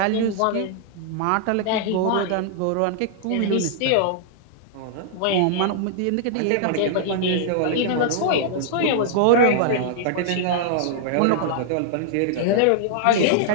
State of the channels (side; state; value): both; different; correlation -0.01